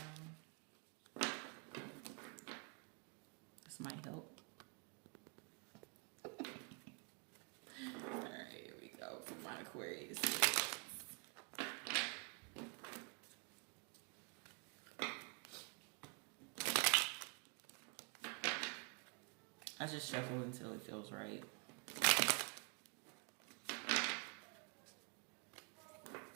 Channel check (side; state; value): left; quieter; 34.7 dB